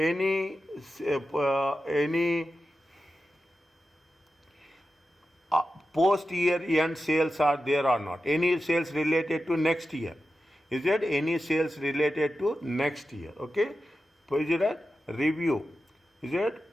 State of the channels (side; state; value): both; normal; correlation 0.91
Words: post year end sales are there or not. Any sales related to next year? Is there any sales related to next year? Okay, is it a review? Is it